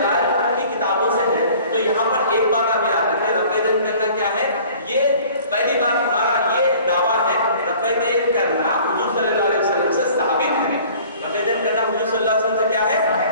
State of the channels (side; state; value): both; inverted; correlation -0.49